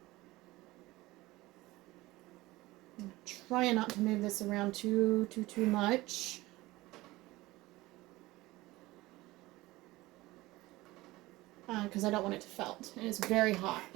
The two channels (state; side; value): quieter; left; 19.3 dB